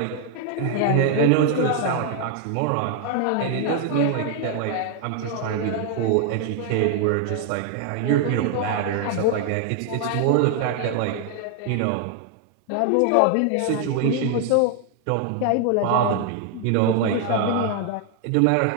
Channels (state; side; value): different; both; correlation 0.00